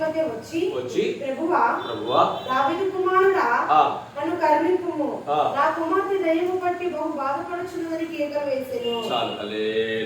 వచ్చి ప్రభువా దావీదు కుమారుడా నన్ను కరుణింపుము, నా కుమార్తె దయ్యము పట్టి బహు బాధపడుచున్నదని కేకలు వేసెను.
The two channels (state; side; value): identical; both; correlation 1.00